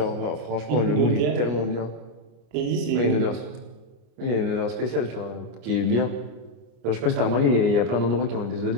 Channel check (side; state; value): left; late; 34 ms